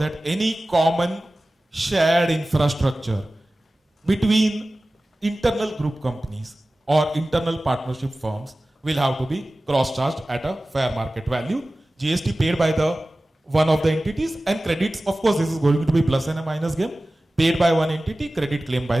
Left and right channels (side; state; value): both; normal; correlation 0.97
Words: any common shared infrastructure between internal group companies or internal partnership firms will have to be cross-charged at a fair market value. GST paid by the one of the entities, and credits, of course, this is going to be plus and a minus game, paid by one entity, credit claimed by